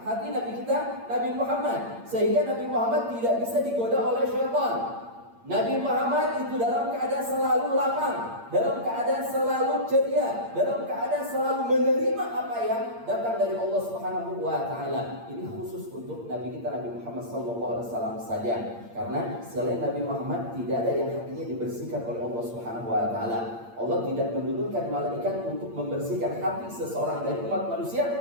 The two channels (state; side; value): late; left; 8.7 ms